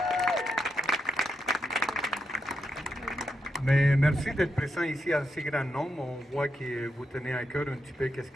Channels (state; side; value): normal; both; correlation 0.84